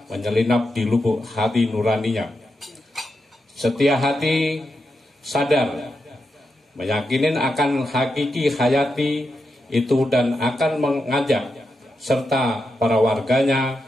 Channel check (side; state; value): both; normal; correlation 0.86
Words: menyelinap di lubuk hati nuraninya. Setia hati sadar meyakinin akan hakiki hayati itu dan akan mengajak serta para warganya